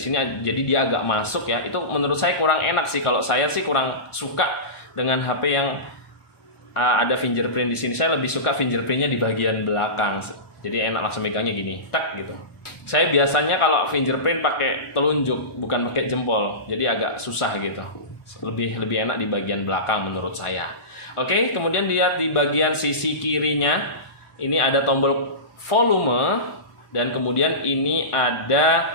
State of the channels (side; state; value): right; late; 1.4 ms